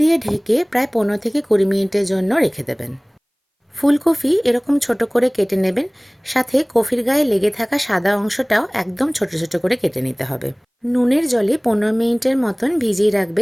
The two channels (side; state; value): both; identical; correlation 1.00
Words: ঢেকে প্রায় 15 থেকে 20 মিনিটের জন্য রেখে দেবেন। ফুলকপি এরকম ছোট করে কেটে নেবেন, সাথে কফির গায়ে লেগে থাকা সাদা অংশটাও একদম ছোট ছোট করে কেটে নিতে হবে। নুনের জলে 15 মিনিটের মতন ভিজিয়ে